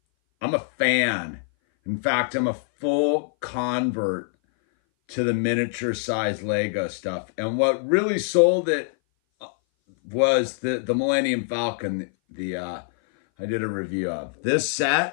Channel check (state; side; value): silent; right; 58 dB below the other